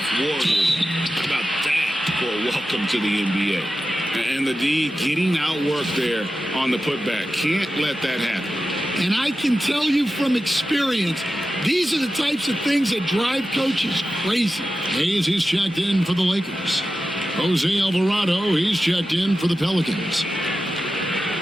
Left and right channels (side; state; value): both; normal; correlation 0.93